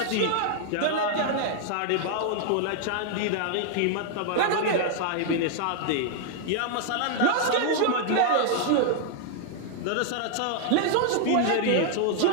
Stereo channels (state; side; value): different; both; correlation 0.00